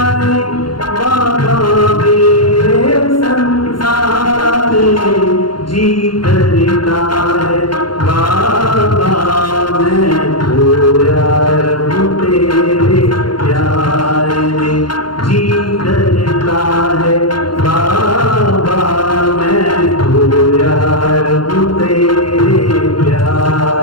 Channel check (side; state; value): right; late; 0.72 ms